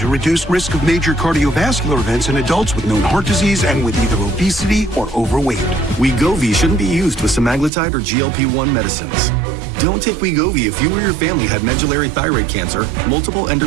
reduce risk of major cardiovascular events in adults with known heart disease and with either obesity or overweight. Wegovy shouldn't be used with semaglutide or GLP-1 medicines. Don't take Wegovy if you or your family had medullary thyroid cancer, multiple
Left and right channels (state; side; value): drops out; left; at 7.7 s